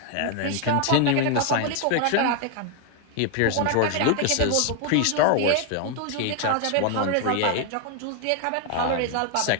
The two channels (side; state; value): both; different; correlation 0.01